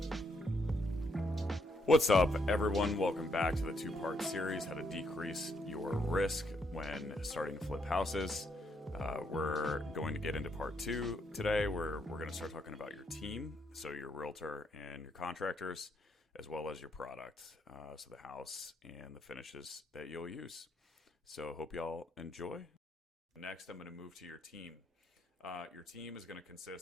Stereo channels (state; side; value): normal; both; correlation 0.75